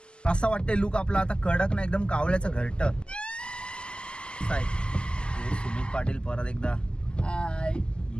असं वाटतंय लुक आपला आता कडक ना एकदम कावळ्याचं घरट. सुमित पाटील परत एकदा.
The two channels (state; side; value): late; right; 0.049 ms